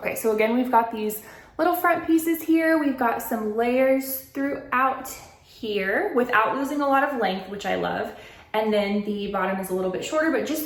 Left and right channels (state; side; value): identical; both; correlation 1.00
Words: so again, we've got these little front pieces here. We've got some layers throughout here without losing a lot of length, which I love. And then the bottom is a little bit shorter, but just